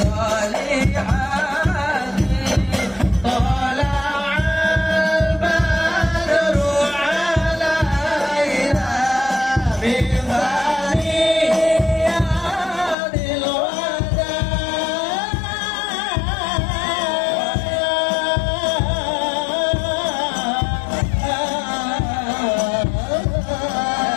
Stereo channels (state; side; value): drops out; right; at 13.0 s